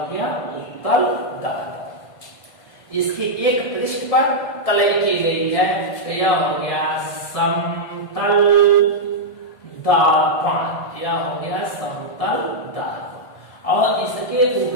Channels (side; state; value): right; late; 1.5 ms